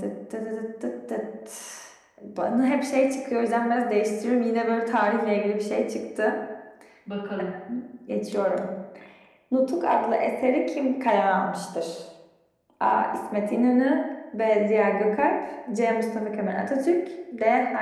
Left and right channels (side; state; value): both; identical; correlation 1.00